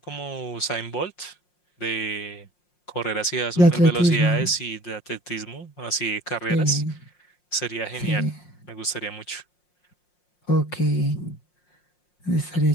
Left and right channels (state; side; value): late; right; 5.6 ms